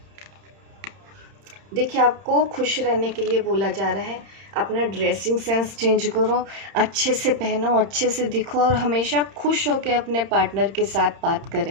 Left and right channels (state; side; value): late; left; 31 ms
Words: देखिए, आपको खुश रहने के लिए बोला जा रहा है, अपना ड्रेसिंग सेंस चेंज करो, अच्छे से पहनो, अच्छे से दिखो और हमेशा खुश होकर अपने पार्टनर के साथ बात